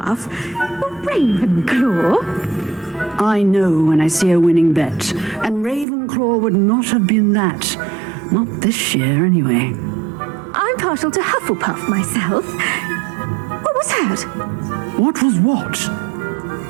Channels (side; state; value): left; drops out; at 5.9 s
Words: Ravenclaw? I know when I see a winning bet, and Ravenclaw would not have been that. Not this year, anyway. I'm partial to Hufflepuff myself. What was that? What was what?